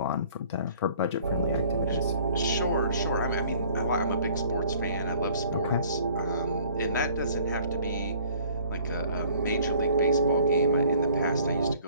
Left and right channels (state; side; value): inverted; both; correlation -0.55